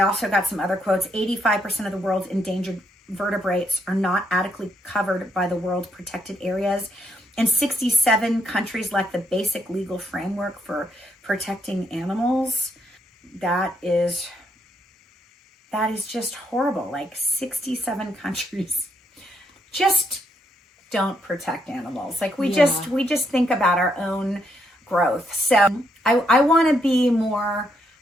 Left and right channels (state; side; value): normal; both; correlation 0.75